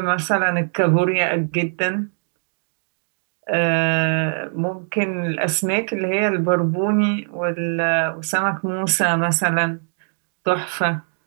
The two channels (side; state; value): left; silent; 65 dB below the other